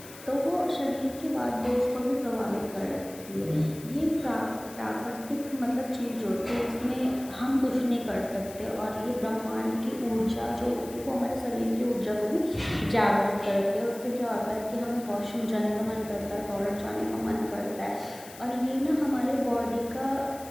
तो वो शरीर के बाद दोष को भी प्रभावित कर सकती है। ये प्राकृतिक मतलब चीज़ होती है, इसमें हम कुछ नहीं कर सकते। और ये ब्रह्मांड की ऊर्जा जो होती है वो हमारे शरीर की ऊर्जा को भी जागृत करती है। उससे क्या होता है कि हमें वॉशरूम जाने का मन करता है, टॉयलेट जाने का मन करता है। और ये ना हमारे बॉडी का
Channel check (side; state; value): left; noise; hiss, 17 dB below the sound